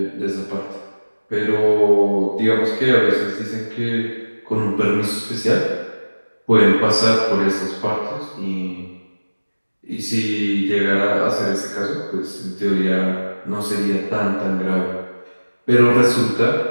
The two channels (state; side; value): inverted; both; correlation -1.00